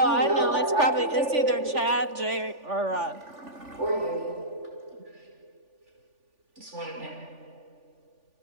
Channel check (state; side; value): late; left; 3.5 ms